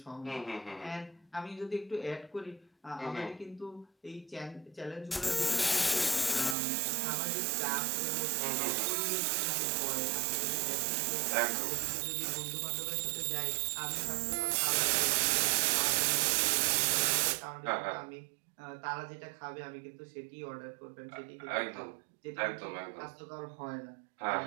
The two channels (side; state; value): left; drops out; at 6.6 s